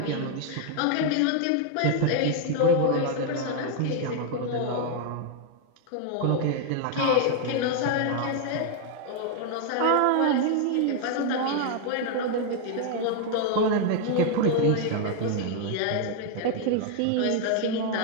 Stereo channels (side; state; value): both; different; correlation 0.00